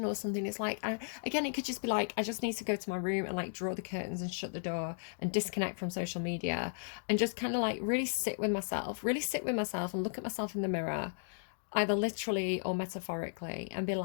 or something. It's like, again, it could just be like, I just need to go to my room and like draw the curtains and shut the door and disconnect from social media and just kind of like really sit with myself, and look at myself in the mirror, either literally or metaphorically, and be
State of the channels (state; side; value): silent; right; digital silence